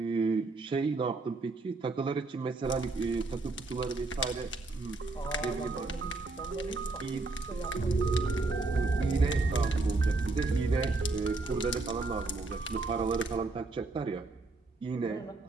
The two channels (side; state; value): left; quieter; 3.3 dB